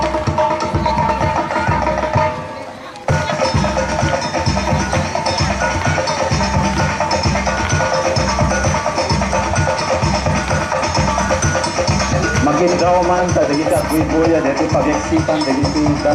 Magindaw man sa dagiti agwibuya dito pagyaksipan dagiti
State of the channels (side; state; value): both; identical; correlation 1.00